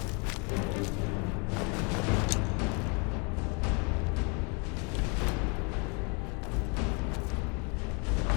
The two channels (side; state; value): right; quieter; 33.4 dB